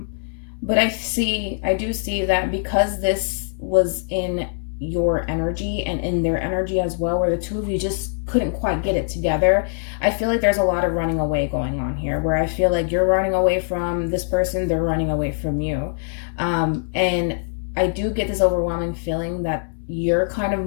I do see that because this was in your energy and in their energy as well, where the two of you just couldn't quite get it together, I feel like there's a lot of running away going on here, where I feel like you're running away from this person, they're running away from you. And I do get this overwhelming feeling that you're kind of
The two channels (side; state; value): right; silent; digital silence